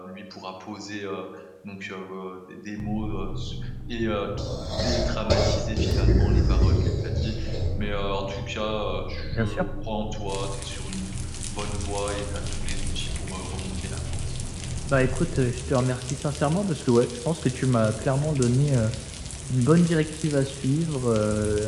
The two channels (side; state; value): both; identical; correlation 1.00